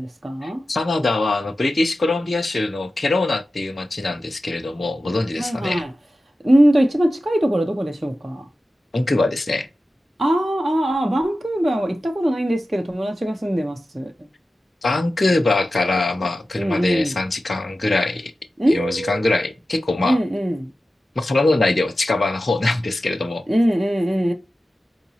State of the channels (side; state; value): both; normal; correlation 0.94